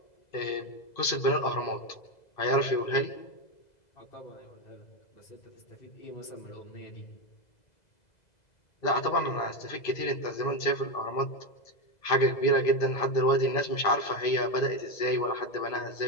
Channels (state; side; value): late; right; 2.0 ms